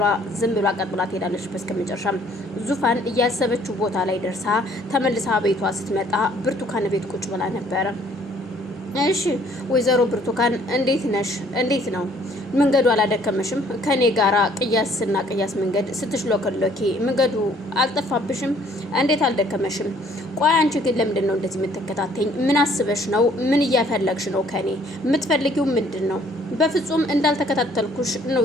ዝም ብላ ቀጥ ብላ ትሄዳለች። በስከመጨረሻም ዙፋን እያሰበችው ቦታ ላይ ደርሳ ተመልሳ ቤቷ ስትመጣ ብርቱካን ቤት ቁጭ ብላ ነበረ። እሺ ወይዘሮ ብርቱካን እንዴት ነሽ? እንዴት ነው መንገዱ? አላደከመሽም? ከኔ ጋራ ቅያስና ቅያስ መንገድ ስትሽሎከሎኪ መንገዱ አልጠፋብሽም? እንዴት አልደከመሽም? ቆይ አንቺ ግን ለምንድን ነው እንደዚህ የምትከታተኝ? ምን አስበሽ ነው? ምን እያፈለግሽ ነው? ከኔ የምትፈልጊው ምንድን ነው? በፍጹም እንዳልተከታተልኩሽ ነው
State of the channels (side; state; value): both; normal; correlation 0.60